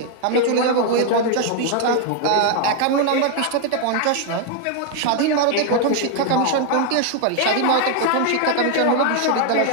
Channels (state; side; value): different; both; correlation 0.00